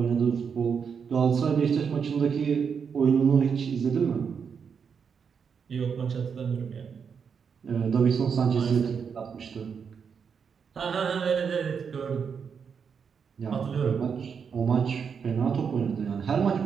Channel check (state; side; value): quieter; left; 6.5 dB